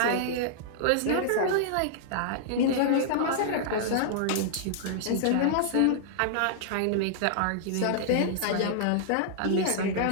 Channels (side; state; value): both; different; correlation -0.01